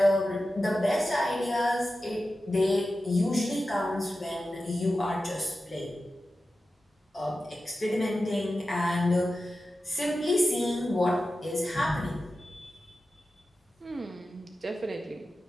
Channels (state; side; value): normal; both; correlation 0.93